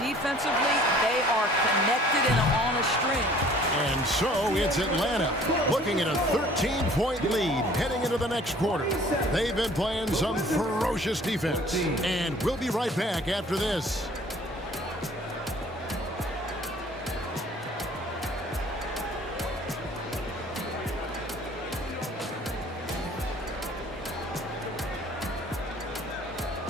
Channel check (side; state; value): both; normal; correlation 0.53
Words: they are connected and on a string. And so it's Atlanta looking at a 13-point lead heading into the next quarter. They've been playing some ferocious defense. And we'll be right back after this.